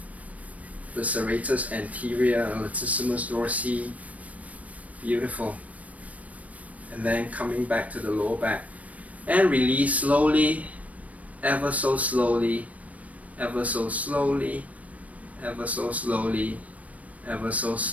the serratus anterior, latissimus dorsi. Beautiful. And then coming back to the lower back. And release slowly, ever so slowly, ever so slowly, ever so slowly, ever so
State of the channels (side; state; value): left; late; 0.068 ms